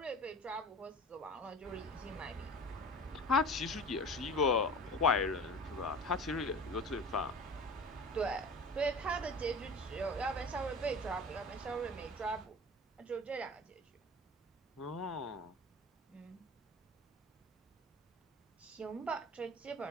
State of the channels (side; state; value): both; normal; correlation 0.38